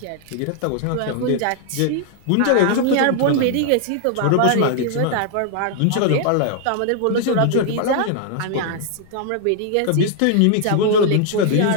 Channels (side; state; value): both; different; correlation 0.00